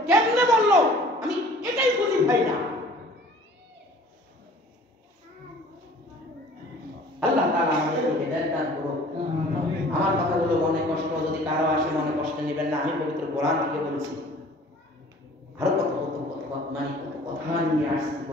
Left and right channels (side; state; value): both; normal; correlation 0.49